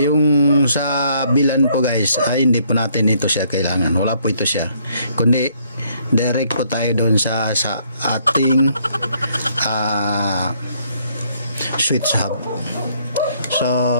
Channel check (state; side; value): inverted; both; correlation -0.67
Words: yung sa VLAN po guys ay hindi po natin ito siya kailangan. Wala po ito siya. Kundi direct po tayo doon sa ating switch hub. So